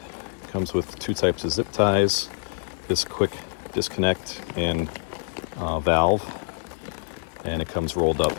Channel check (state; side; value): silent; right; digital silence